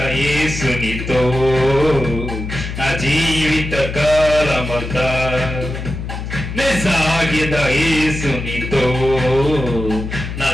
యేసునితో నా జీవిత కాలమంతా సాగెద యేసునితో నా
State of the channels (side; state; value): left; noise; hum, 6 dB below the sound